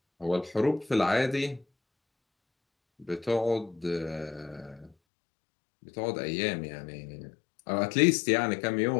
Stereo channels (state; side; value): drops out; right; at 5.0 s